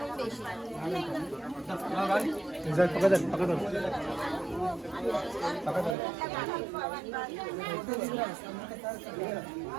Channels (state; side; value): drops out; left; at 6.0 s